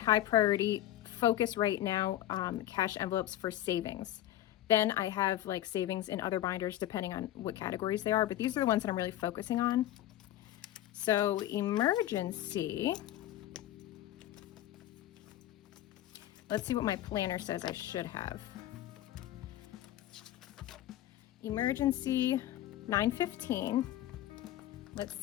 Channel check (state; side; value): quieter; right; 13.4 dB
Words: priority focus right now, cash envelopes for savings. Then I have like savings in other binders depending on what categories they are, but these are the ones that I'm really focusing on. So emergency, let's see what my planner says I should have. Emergency, $9.15. Let's